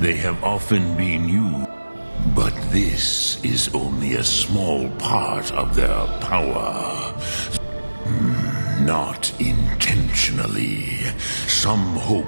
they have often been used. But this is only a small part of their power. Not intentionally. Some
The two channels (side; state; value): both; inverted; correlation -1.00